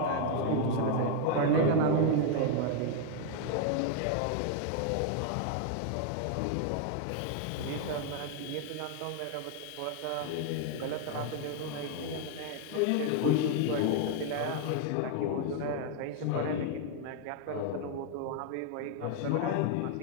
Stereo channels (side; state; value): both; different; correlation 0.00